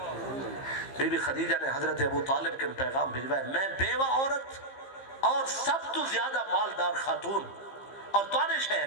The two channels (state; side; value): late; right; 15 ms